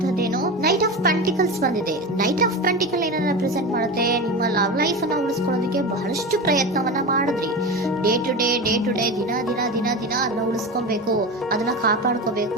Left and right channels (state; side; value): normal; both; correlation 0.25